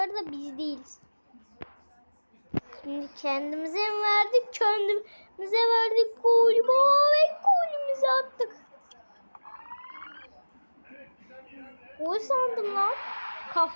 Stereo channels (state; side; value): inverted; both; correlation -1.00